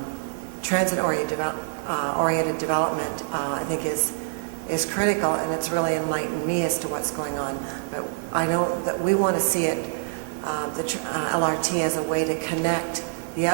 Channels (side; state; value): left; silent; digital silence